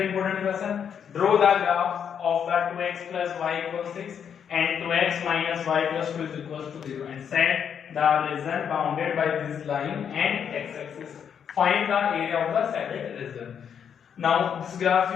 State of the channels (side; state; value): right; quieter; 7.9 dB